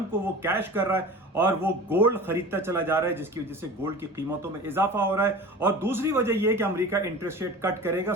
کو وہ کیش کر رہا ہے، اور وہ گولڈ خریدتا چلا جا رہا ہے، جس کی وجہ سے گولڈ کی قیمتوں میں اضافہ ہو رہا ہے۔ اور دوسری وجہ یہ ہے کہ امریکہ انٹرسٹ ریٹ کٹ کرے گا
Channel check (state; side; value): normal; both; correlation 0.37